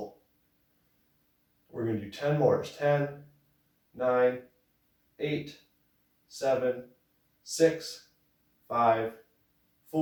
We're going to do 10 more. 10, 9, 8, 7, 6, 5,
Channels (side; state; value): both; identical; correlation 1.00